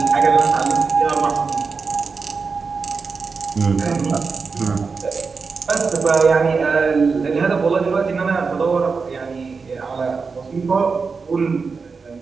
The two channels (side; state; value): left; quieter; 4.9 dB